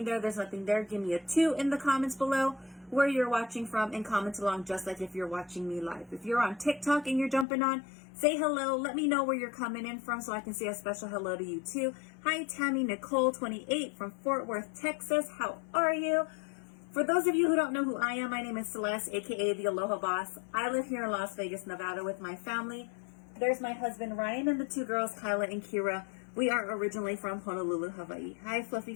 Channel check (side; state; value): right; drops out; at 7.5 s